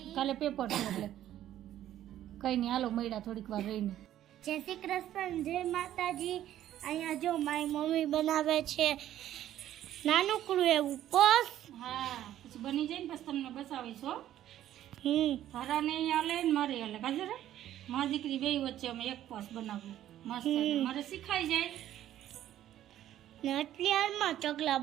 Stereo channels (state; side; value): quieter; left; 12.3 dB